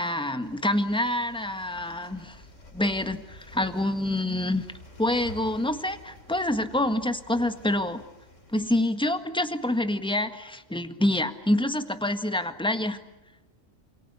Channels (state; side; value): normal; both; correlation 0.57